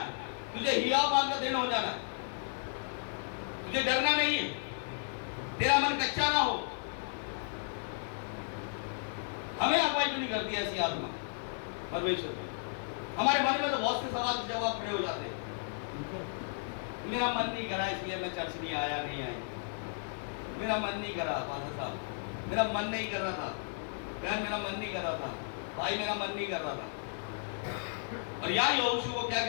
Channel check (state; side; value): silent; right; digital silence